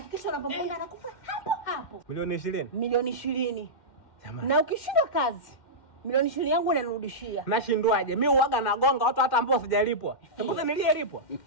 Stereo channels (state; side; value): late; right; 2.1 ms